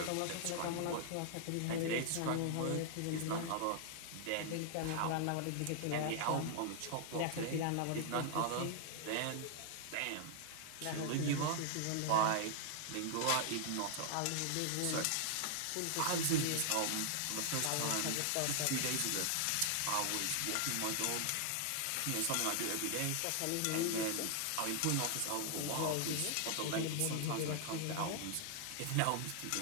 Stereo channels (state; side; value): different; both; correlation 0.00